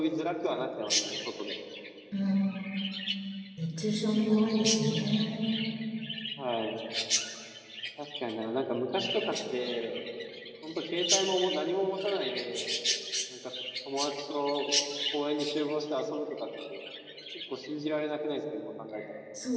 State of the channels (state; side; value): identical; both; correlation 1.00